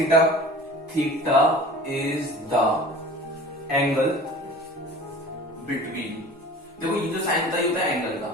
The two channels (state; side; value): normal; both; correlation 0.42